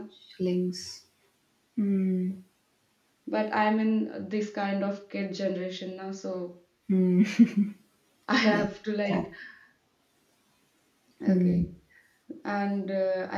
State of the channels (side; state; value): both; identical; correlation 1.00